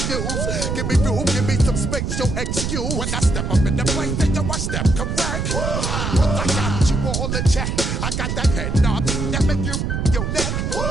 Give me room, give me some space, your excuse. When I step up in the place, then you I step correct. But I got you all in check. I got that head knob that make you your neck.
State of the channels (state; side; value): noise; right; rumble, 1 dB below the sound